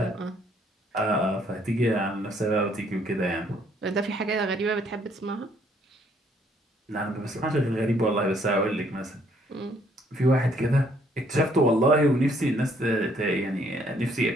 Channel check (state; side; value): normal; both; correlation 0.66